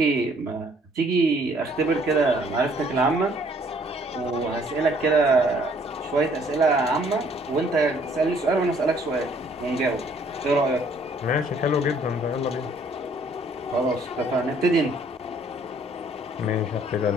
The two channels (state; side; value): normal; both; correlation 0.61